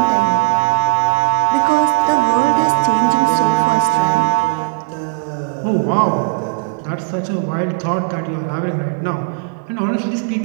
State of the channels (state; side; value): silent; left; digital silence